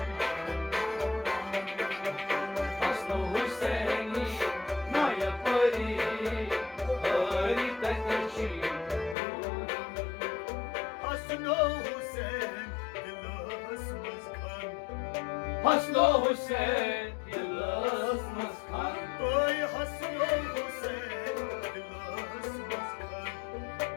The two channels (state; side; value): drops out; right; at 9.2 s